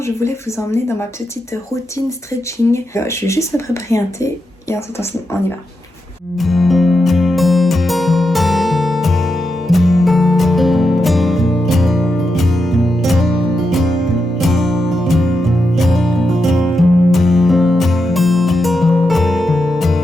je voulais vous emmener dans ma petite routine stretching. Je vais juste me préparer un thé et ensuite on y va.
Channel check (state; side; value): normal; both; correlation 0.86